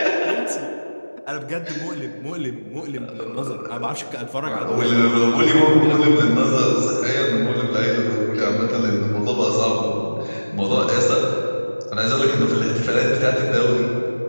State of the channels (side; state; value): both; inverted; correlation -1.00